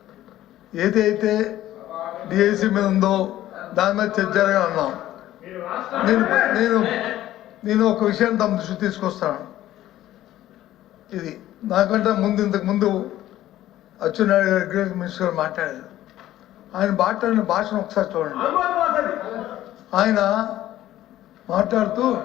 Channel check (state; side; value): quieter; right; 13.8 dB